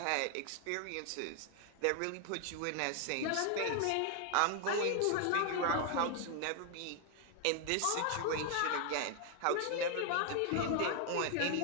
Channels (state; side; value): different; both; correlation 0.00